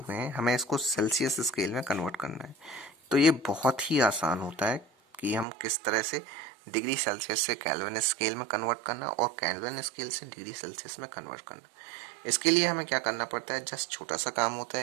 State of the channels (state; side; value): drops out; left; at 5.5 s